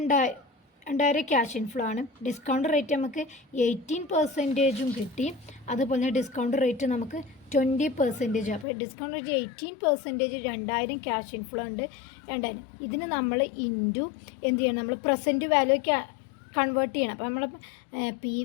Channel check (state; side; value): drops out; right; at 8.7 s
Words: 2000 ക്യാഷ് ഇൻഫ്ലോ ആണ്. ഡിസ്കൗണ്ട് റേറ്റ് നമുക്ക് 18% കിട്ടി. അതുപോലെ ഡിസ്കൗണ്ട് റേറ്റ് നമുക്ക് 20%. അപ്പോൾ ഡിസ്കൗണ്ട് റേറ്റ് 18%, 2000 ക്യാഷ് ഇൻഫ്ലോ ഉണ്ട്. 2000 ഇതിന് നമ്മൾ ഇൻറ്റു എന്ത് ചെയ്യണം, നമ്മൾ പ്രസൻറ്റ് വാല്യൂ കൺവേർട്ട് ചെയ്യണം. അപ്പോൾ നമ്മൾ പി